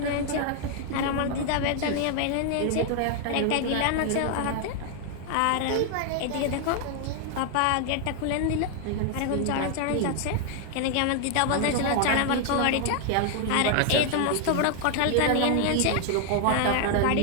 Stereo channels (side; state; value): both; different; correlation 0.00